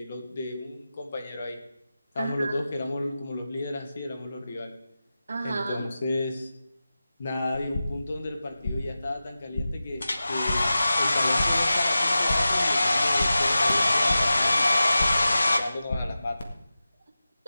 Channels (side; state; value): both; inverted; correlation -0.94